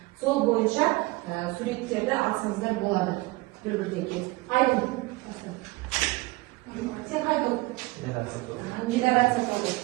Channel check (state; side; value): quieter; left; 22.2 dB